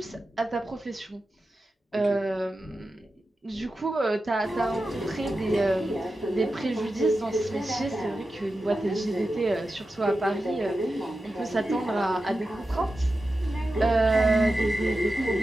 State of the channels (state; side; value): normal; both; correlation 0.92